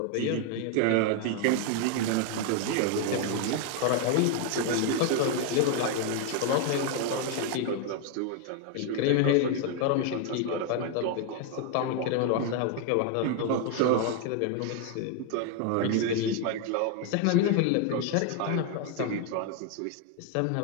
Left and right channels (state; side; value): different; both; correlation 0.01